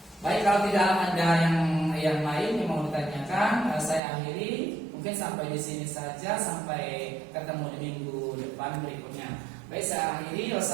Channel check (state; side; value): drops out; left; at 4.0 s